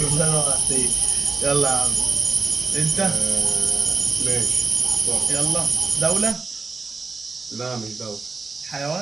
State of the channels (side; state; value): left; quieter; 4.3 dB